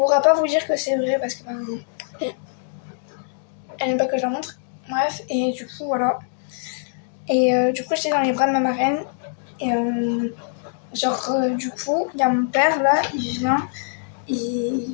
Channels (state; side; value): silent; right; 63 dB below the other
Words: pas vous dire que c'est vrai parce que elle n'aime pas que je la montre. Bref, et du coup, voilà. Et du coup, j'étais dans les bras de ma marraine. Et du coup, il y a mon père là, il vient.